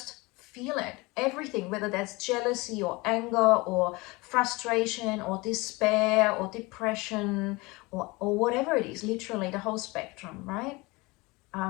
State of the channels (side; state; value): right; quieter; 24.1 dB